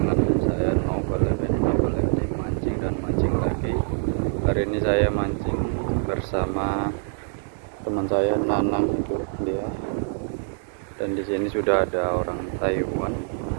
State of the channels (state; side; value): silent; left; digital silence